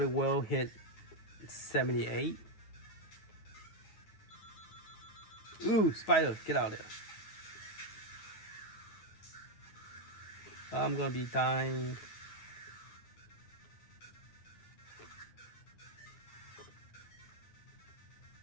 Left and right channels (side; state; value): right; late; 9.6 ms